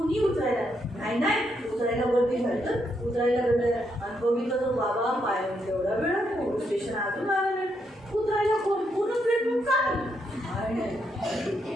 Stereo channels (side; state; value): both; normal; correlation 0.78